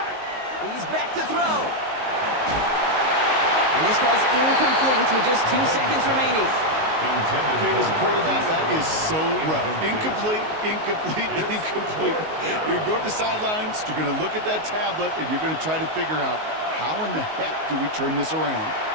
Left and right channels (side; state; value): left; late; 19 ms